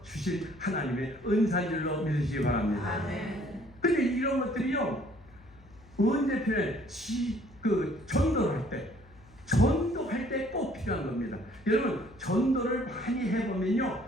주신 하나님의 은사인 줄로 믿으시기 바랍니다. 근데 이런 것들이요 언제 필요해? 전도할 때 꼭 필요한 겁니다. 여러분 전도를 많이 해보면요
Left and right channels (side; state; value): left; noise; hum, 25 dB below the sound